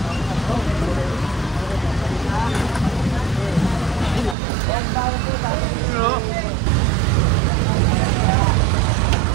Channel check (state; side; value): drops out; left; at 4.4 s